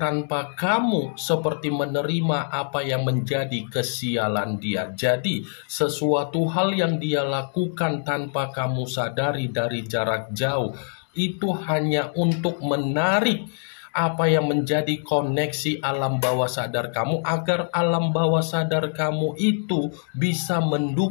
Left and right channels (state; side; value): silent; right; digital silence